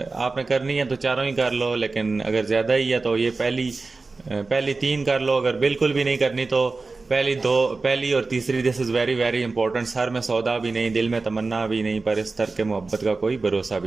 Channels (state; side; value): quieter; left; 3.8 dB